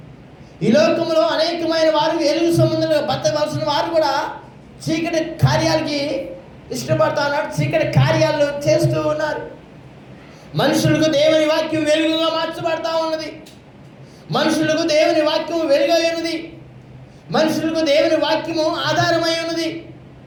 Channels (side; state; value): both; identical; correlation 1.00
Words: ఈ లోకంలో అనేకమైన వారు వెలుగు సంబంధంగా బతకవలసిన వారు కూడా చీకటి కార్యాలకి ఇష్టపడతా ఉన్నారు, చీకటి కార్యాలు చేస్తూ ఉన్నారు. మనుషులకు దేవుని వాక్యం వెలుగుగా మార్చబడతా ఉన్నది. మనుషులకు దేవుని వాక్యం వెలుగై ఉన్నది. మనుషులకు దేవుని వాక్యము ఆధారమై ఉన్నది.